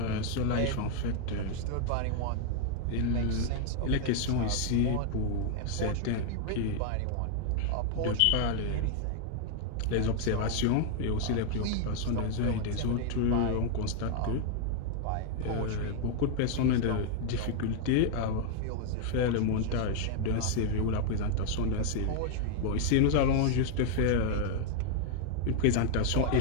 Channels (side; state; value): both; different; correlation 0.00